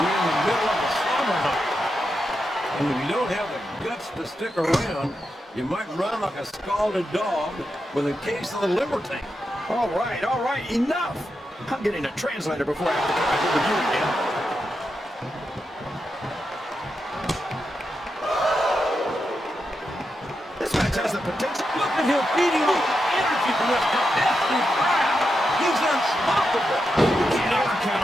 we're in the middle of a summer night. And if you don't have the guts to stick around, you might run like a scalded dog with a case of the liver tank. All right, enough! I'm getting a translator before I have to come back over you again. This match has the potential. Look at him feeding off the energy from this competitive crowd. He's unstoppable. You can't ever count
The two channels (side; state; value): both; normal; correlation 0.87